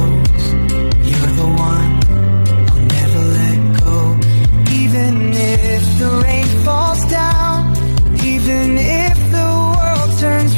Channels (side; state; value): both; inverted; correlation -1.00